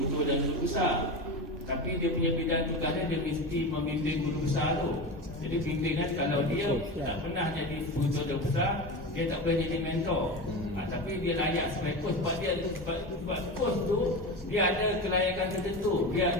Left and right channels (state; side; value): normal; both; correlation 0.24